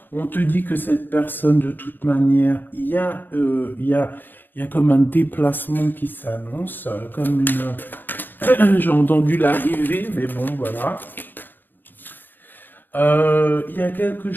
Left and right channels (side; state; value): right; late; 0.092 ms